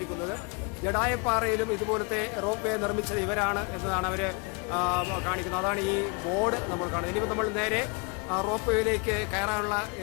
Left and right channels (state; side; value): quieter; right; 32.6 dB